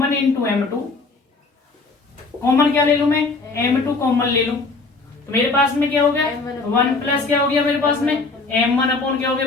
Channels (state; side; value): quieter; right; 3.8 dB